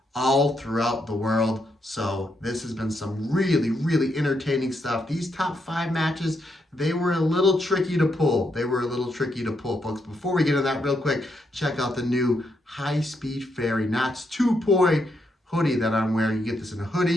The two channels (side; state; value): both; normal; correlation 0.79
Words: all throughout the world. So this has been some really entertaining stuff. These top 5 matches, they were a little tricky to pull. Folks. Before we get into that real quick, check out the new high-speed fairy knots 2-point hoodie that I'm wearing. You get this in a